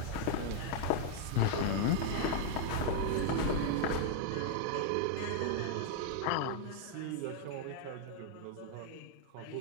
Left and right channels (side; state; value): both; different; correlation 0.00